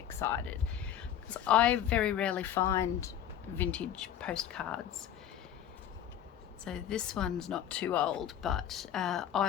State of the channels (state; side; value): quieter; right; 10.3 dB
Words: because I very rarely find vintage postcards. So this one's not too old, but